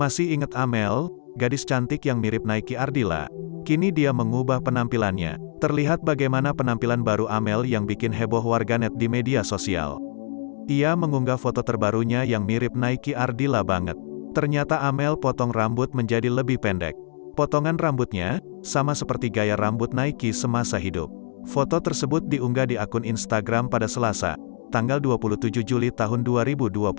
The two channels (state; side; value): silent; right; digital silence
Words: ingat Amel, gadis cantik yang mirip Nike Ardilla? Kini dia mengubah penampilannya. Terlihat bagaimana penampilan baru Amel yang bikin heboh warganet di media sosial. Ia mengunggah foto terbarunya yang mirip Nike Ardilla banget. Ternyata Amel potong rambut menjadi lebih pendek. Potongan rambutnya sama seperti gaya rambut Nike semasa hidup. Foto tersebut diunggah di akun Instagram pada Selasa, tanggal 27 Juli tahun